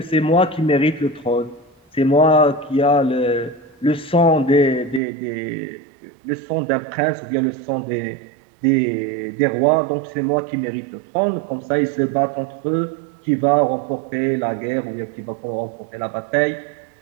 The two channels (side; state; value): left; drops out; at 5.0 s